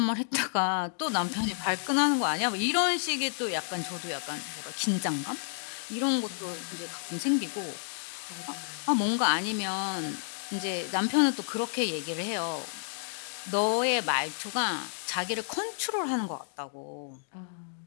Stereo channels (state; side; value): silent; right; digital silence